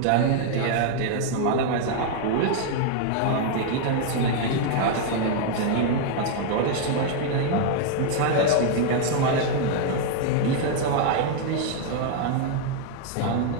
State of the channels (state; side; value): different; both; correlation 0.00